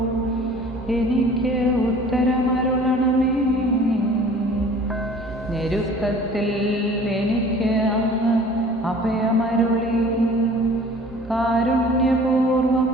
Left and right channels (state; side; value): normal; both; correlation 0.48